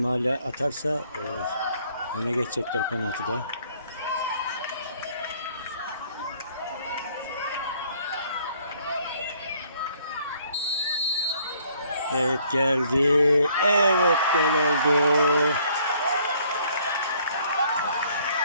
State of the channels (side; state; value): both; inverted; correlation -0.62